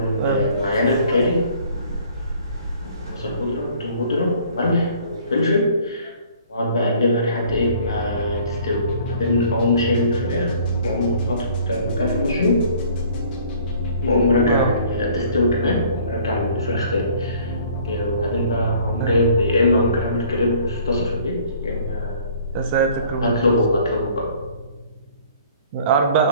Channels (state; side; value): inverted; both; correlation -0.55